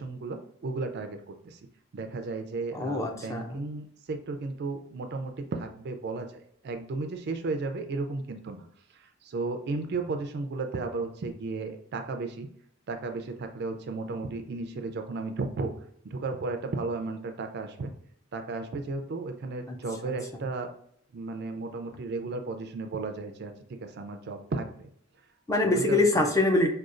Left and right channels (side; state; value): both; normal; correlation 0.41